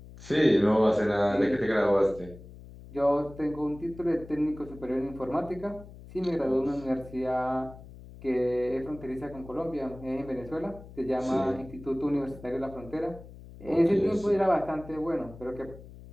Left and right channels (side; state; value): left; noise; hum, 17 dB below the sound